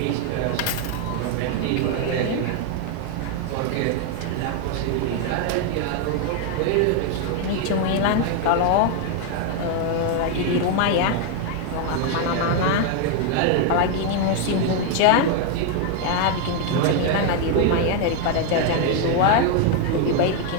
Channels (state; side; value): different; both; correlation 0.01